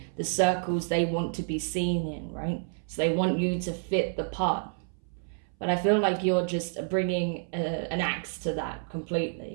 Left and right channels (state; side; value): silent; left; 58 dB below the other